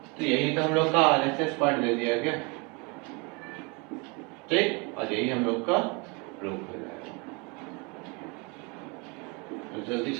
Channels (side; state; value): left; quieter; 30.3 dB